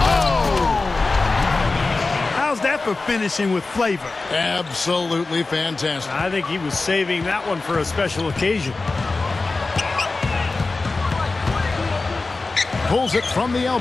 How's that for finishing with flavor? Absolutely fantastic. I think he was saving that one for a special occasion. Pulls it from the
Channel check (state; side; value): quieter; right; 3.6 dB